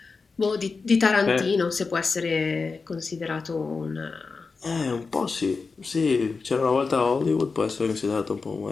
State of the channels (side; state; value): right; quieter; 4.5 dB